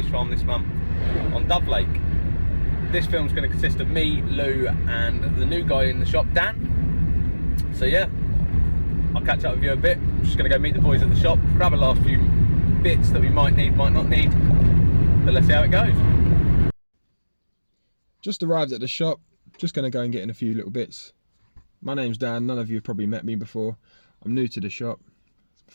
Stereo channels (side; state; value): both; inverted; correlation -1.00